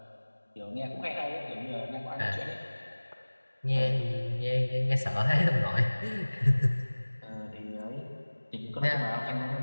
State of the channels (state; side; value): inverted; both; correlation -1.00